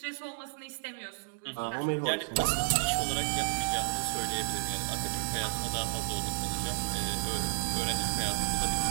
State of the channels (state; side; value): silent; left; digital silence